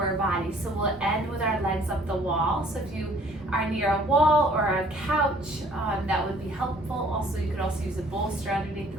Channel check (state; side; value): normal; both; correlation 0.57